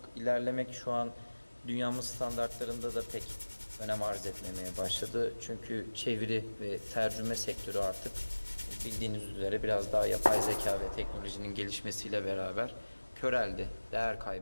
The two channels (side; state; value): both; inverted; correlation -1.00